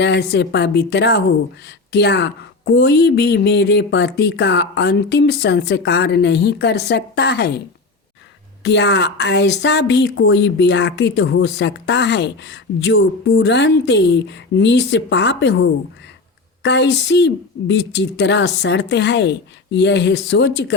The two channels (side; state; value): right; quieter; 3.7 dB